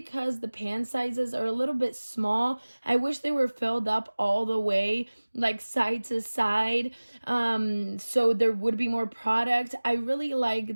the pan sizes are a little bit small. I wish they were filled up all the way, like side to side, so there would be more product. I really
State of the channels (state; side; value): inverted; both; correlation -1.00